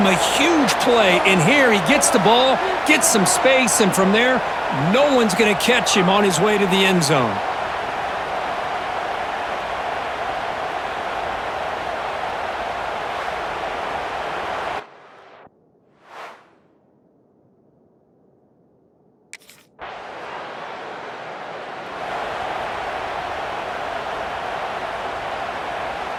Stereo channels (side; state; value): both; identical; correlation 1.00